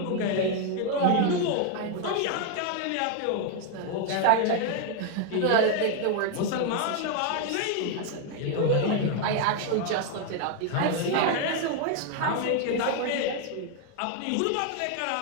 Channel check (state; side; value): different; both; correlation 0.00